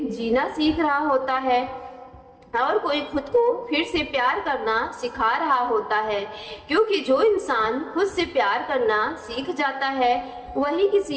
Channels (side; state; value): both; identical; correlation 1.00